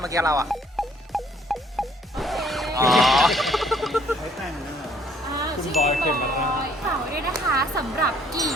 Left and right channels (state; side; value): normal; both; correlation 0.62